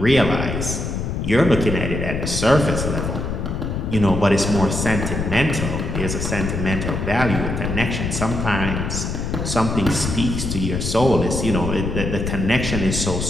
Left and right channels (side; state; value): left; noise; rumble, 3 dB below the sound